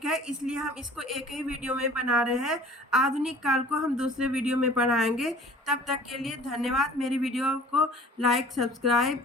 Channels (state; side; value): normal; both; correlation 0.48